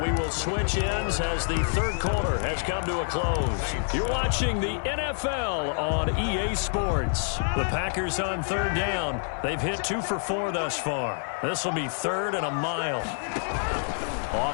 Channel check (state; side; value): silent; right; digital silence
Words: will switch ends as the 3rd quarter has come to a close. You're watching the NFL on EA Sports. The Packers on 3rd down. They've hit 2 for 4 thus far. This will be 3rd and a mile.